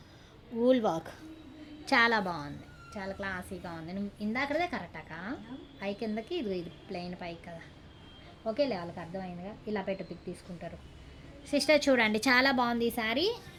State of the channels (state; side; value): identical; both; correlation 1.00